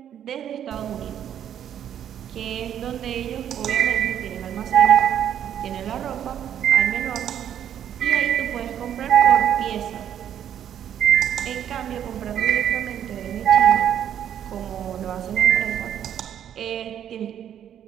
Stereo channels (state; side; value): quieter; left; 9.8 dB